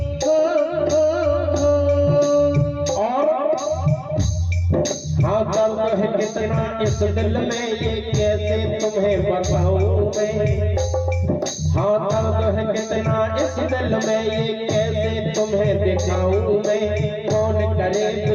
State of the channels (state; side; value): identical; both; correlation 1.00